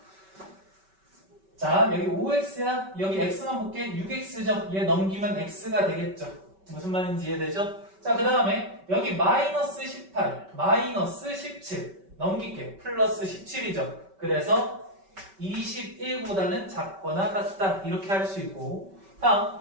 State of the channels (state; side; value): late; left; 5.2 ms